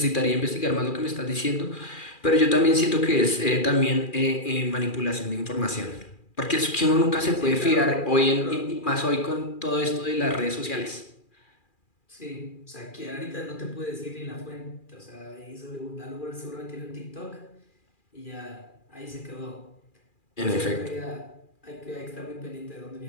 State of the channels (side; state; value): right; late; 2.4 ms